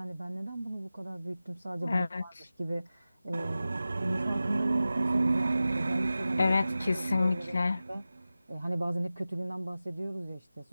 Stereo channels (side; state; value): both; inverted; correlation -0.95